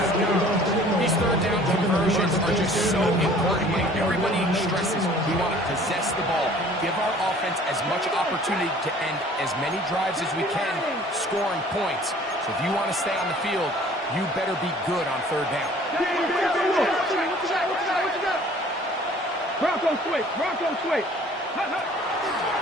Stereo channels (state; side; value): normal; both; correlation 0.52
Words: These third down conversions are just so important. Like everybody stresses, we want to possess the ball, give our offense as much opportunity to end as many drives as we can, scoring points. So if you want to stay on the field, you better be good on third down. Bronco switch, Bronco switch. And